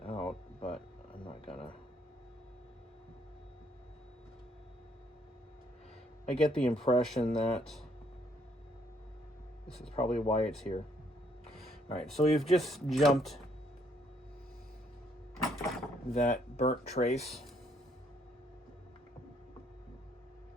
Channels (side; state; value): both; normal; correlation 0.68